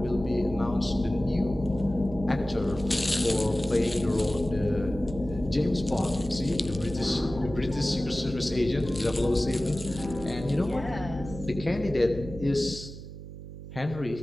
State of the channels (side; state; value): right; noise; hum, 12 dB below the sound